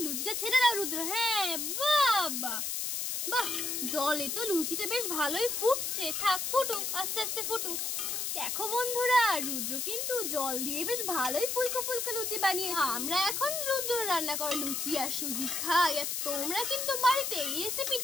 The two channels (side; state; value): left; noise; hiss, 1 dB below the sound